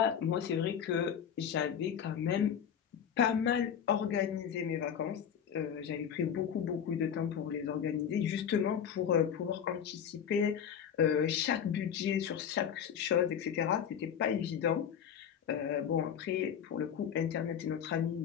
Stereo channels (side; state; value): right; quieter; 8.4 dB